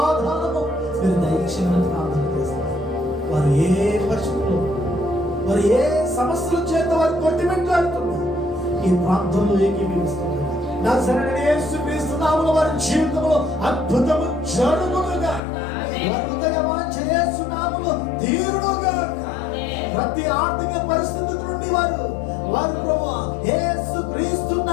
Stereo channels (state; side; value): drops out; right; at 15.4 s